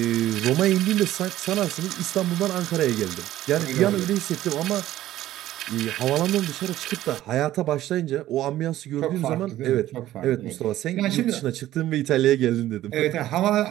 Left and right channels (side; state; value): left; quieter; 14.1 dB